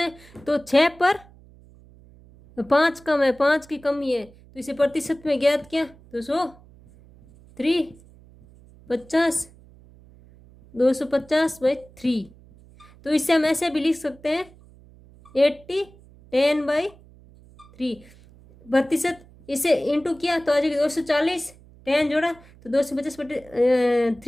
तो 6 पर 5 कम है, 5 की कमी है, तो इसे प्रतिशत में ज्ञात किया, तो 100, 3, 50, 250/3, तो इससे हम ऐसे भी लिख सकते हैं 80 10/3 प्रतिशत, इसे इंटू किया तो आ जाएगा 240, 10 जोड़ा तो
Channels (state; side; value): noise; right; hum, 25 dB below the sound